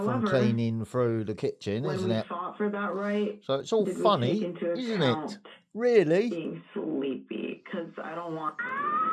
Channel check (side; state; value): both; identical; correlation 1.00